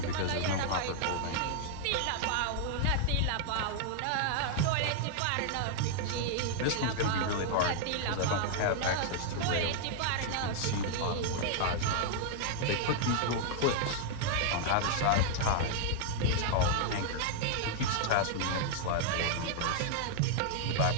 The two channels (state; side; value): different; both; correlation -0.01